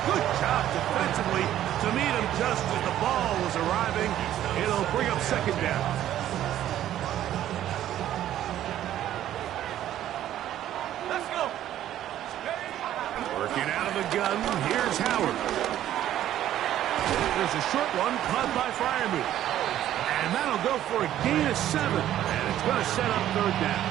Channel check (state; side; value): quieter; left; 12.2 dB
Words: Good job defensively to meet him just as the ball was arriving. It'll bring up second down. Let's go. Working out of the gun, here's Howard. There's a short one caught by Freiermuth. And that'll go for a gain of 7. And it's going to set up third down.